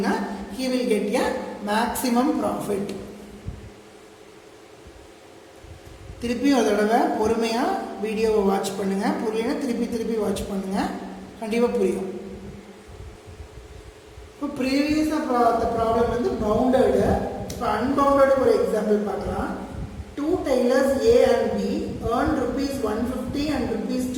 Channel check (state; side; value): identical; both; correlation 1.00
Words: he will get a maximum profit. திருப்பி ஒரு தடவை பொறுமையாக வீடியோவை வாட்ச் பண்ணுங்கள். புரியலைன்னா திருப்பி வாட்ச் பண்ணுங்கள், கண்டிப்பாக புரியும். இப்போ ப்ரீவியஸாக அந்த ப்ராப்ளம் வந்து பவுண்டடு. இப்போ அன்பவுண்டடு ஒரு எக்ஸாம்பிள் பார்க்கலாம். 2 tailors A and B earn ₹150 and